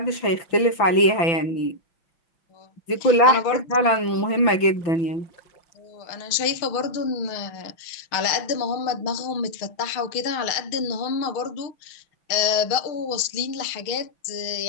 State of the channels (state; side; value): late; right; 6.0 ms